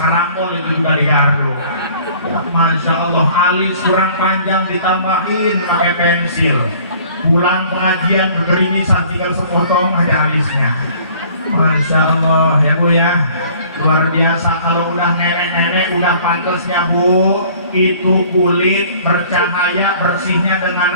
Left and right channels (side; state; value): both; inverted; correlation -0.53